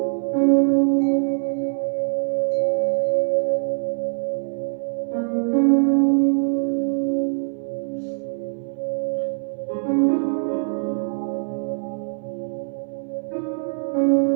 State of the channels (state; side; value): silent; left; 63 dB below the other